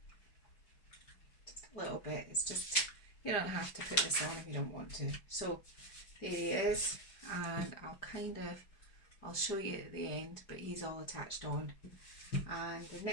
Just a little bit, it's just, you don't have to put this on if you don't want to. So there he is, and I'll show you at the end, but he's all attached on. And the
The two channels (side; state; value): right; late; 5.0 ms